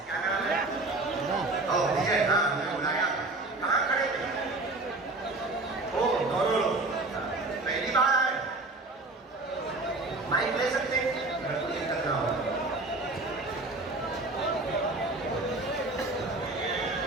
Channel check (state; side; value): quieter; left; 3.1 dB